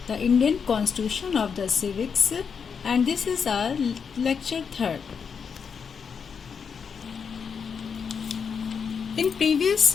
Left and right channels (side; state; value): right; quieter; 6.3 dB